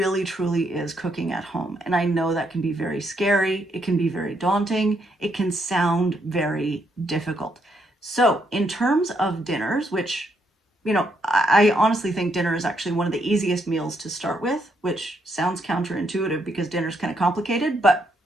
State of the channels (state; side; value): normal; both; correlation 0.76